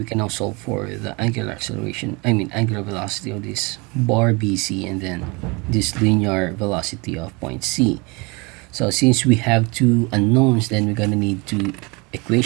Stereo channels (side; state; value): left; quieter; 27.6 dB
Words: can now solve for the angular acceleration, angular velocity of this bar BC, and then this linear velocity of point C. So since we have two unknowns, then we're gonna need two